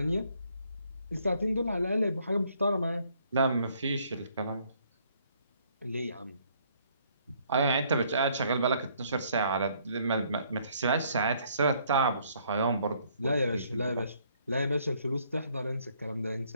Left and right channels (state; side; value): inverted; both; correlation -0.66